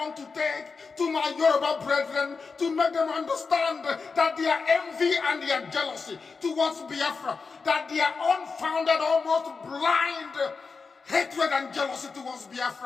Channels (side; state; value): right; quieter; 4.7 dB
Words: to take to my Yoruba brethren, to make them understand that their envy and their jealousy towards Biafra, that their unfounded, almost blind hatred and jealousy towards